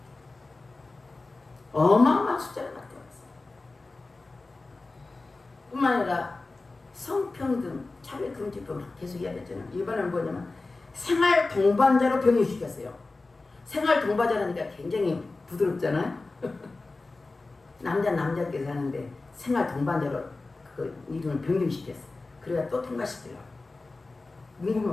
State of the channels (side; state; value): right; quieter; 3.4 dB